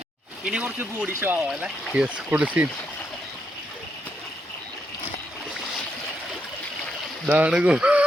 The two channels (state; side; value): normal; both; correlation 0.80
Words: ഇനി കുറച്ച് ബോഡി ഷോ ആവാം അല്ലേ? യെസ്, കുളിസീൻ